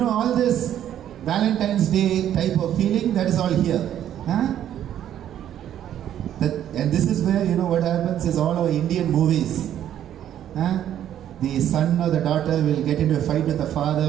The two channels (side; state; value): left; quieter; 10.8 dB